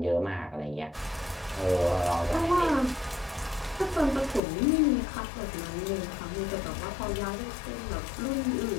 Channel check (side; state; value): right; drops out; at 4.4 s